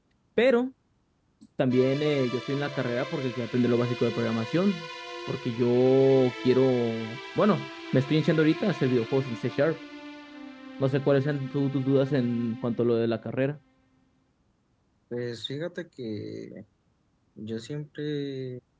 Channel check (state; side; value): identical; both; correlation 1.00